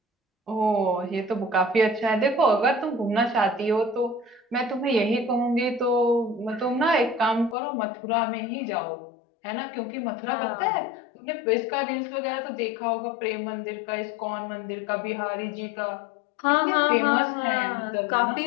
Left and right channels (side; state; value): right; drops out; at 7.6 s